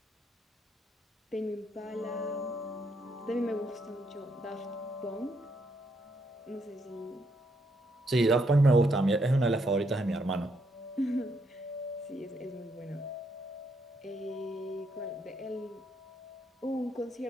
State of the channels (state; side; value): normal; both; correlation 0.75